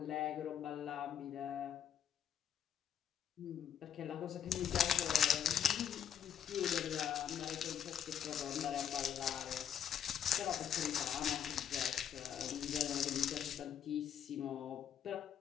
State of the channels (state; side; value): quieter; right; 9.3 dB